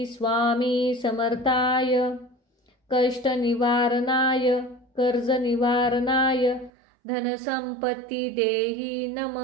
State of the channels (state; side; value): drops out; left; at 6.7 s